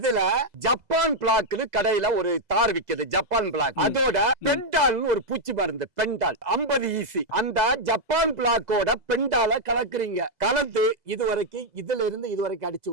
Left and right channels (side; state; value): left; late; 2.0 ms